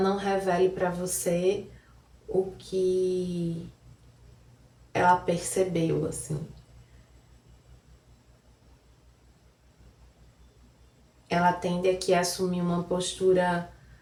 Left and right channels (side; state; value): both; identical; correlation 1.00